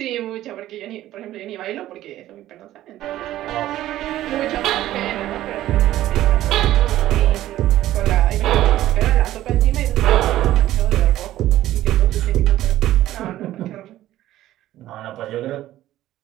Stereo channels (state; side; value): quieter; left; 14.1 dB